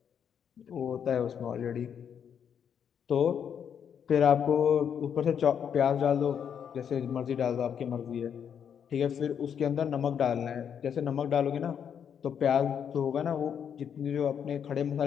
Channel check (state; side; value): quieter; right; 8.0 dB